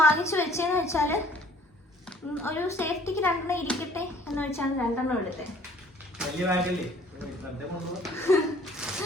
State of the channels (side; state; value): both; normal; correlation 0.55